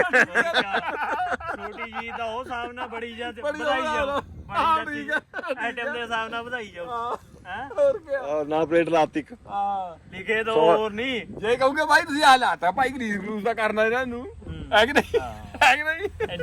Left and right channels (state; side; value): identical; both; correlation 1.00